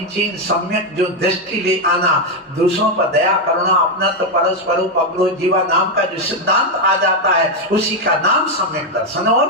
सम्यक जो दृष्टि ले आना, दूसरों पर दया करुणा, अपना तो परस्पर उपग्रह जीवा नाम का जो सिद्धांत आ जाता है उसी का नाम सम्यक दर्शन और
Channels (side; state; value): both; normal; correlation 0.05